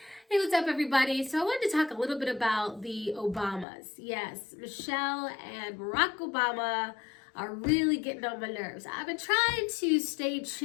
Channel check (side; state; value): right; drops out; at 3.7 s